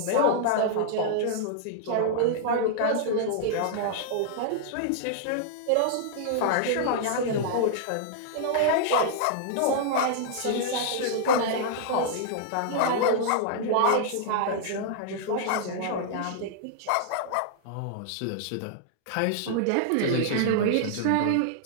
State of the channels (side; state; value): both; different; correlation -0.01